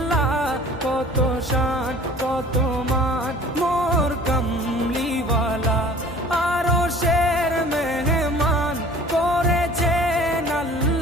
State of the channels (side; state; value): both; normal; correlation 0.48